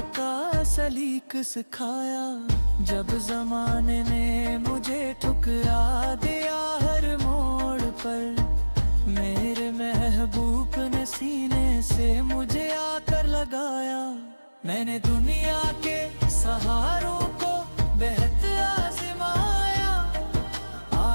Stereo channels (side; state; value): both; inverted; correlation -1.00